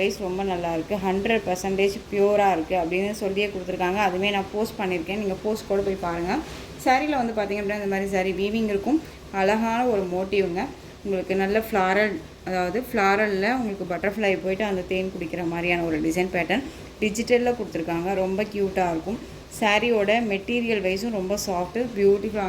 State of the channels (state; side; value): identical; both; correlation 1.00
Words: ரொம்ப நல்லாயிருக்கு. 100% ப்யூராக இருக்குது அப்படின்னு சொல்லியே கொடுத்துருக்காங்க. அதுவே நான் போஸ்ட் பண்ணியிருக்கேன். நீங்கள் போஸ்ட் கூட போய் பாருங்கள். சாரியில் வந்து பார்த்திங்க அப்படின்னா இந்த மாதிரி சாரி வீவிங் இருக்கும். அழகான ஒரு மோட்டிவ்ங்க. உங்களுக்கு நல்ல ஃப்ளாரல், அதாவது ஃப்ளாரலில் உங்களுக்கு பட்டர்ஃப்ளை போயிட்டு அந்த தேன் குடிக்கிற மாதிரியான ஒரு டிசைன் பேட்டர்ன் டிஜிட்டலில் கொடுத்துருக்காங்க. ரொம்ப க்யூட்டாக இருக்கும். சாரியோட மெட்டீரியல் வைஸும் ரொம்ப சாஃப்ட்டு